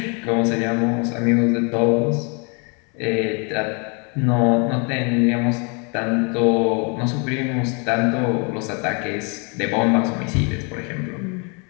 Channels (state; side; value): quieter; right; 34.3 dB